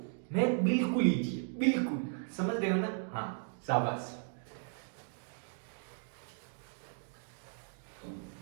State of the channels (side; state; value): left; silent; digital silence